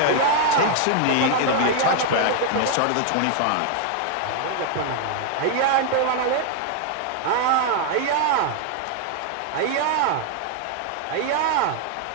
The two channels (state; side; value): different; both; correlation 0.00